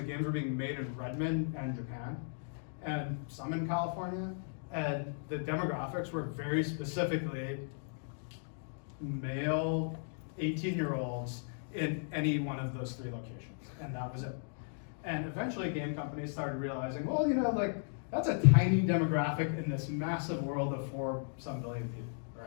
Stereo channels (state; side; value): silent; right; digital silence